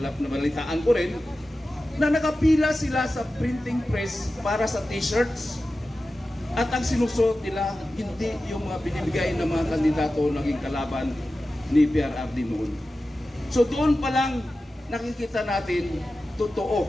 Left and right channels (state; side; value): normal; both; correlation 0.94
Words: ko rin, na nakapila sila sa printing press para sa t-shirts. At ang sinusuot nila, hindi yung mga binibigay ng mga kandidato naging kalaban ni PRRD noon. So doon pa lang nakikita natin,